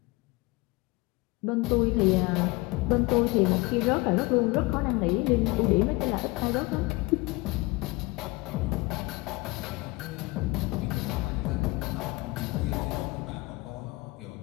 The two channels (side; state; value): right; quieter; 23.7 dB